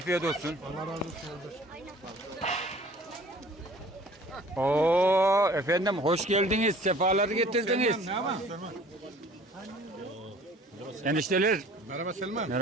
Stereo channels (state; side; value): normal; both; correlation 0.51